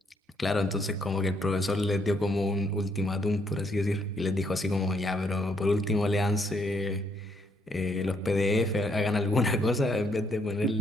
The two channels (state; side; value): normal; both; correlation 0.72